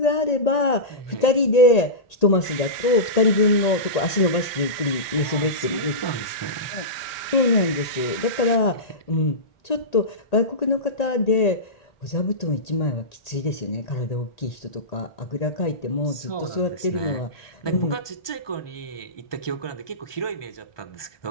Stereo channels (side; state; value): right; late; 1.8 ms